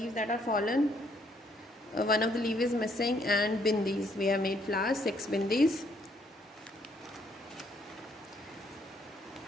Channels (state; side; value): normal; both; correlation 0.69